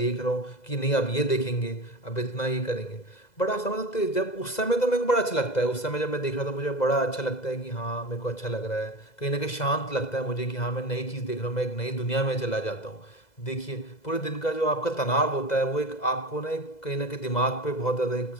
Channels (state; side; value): late; right; 2.0 ms